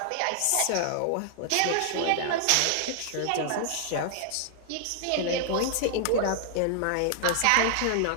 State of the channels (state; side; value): different; both; correlation 0.00